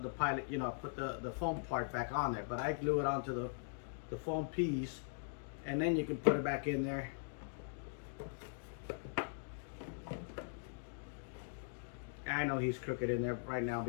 pilot, put the foam part back on there. But I glue it onto the foam piece, and then you can put it back in there. I know he's crooked in there right now,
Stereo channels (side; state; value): right; silent; digital silence